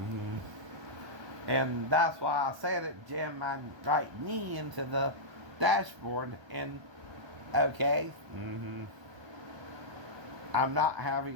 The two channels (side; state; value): left; late; 1.2 ms